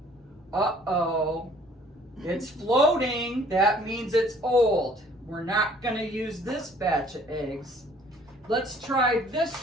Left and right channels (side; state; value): both; normal; correlation 0.57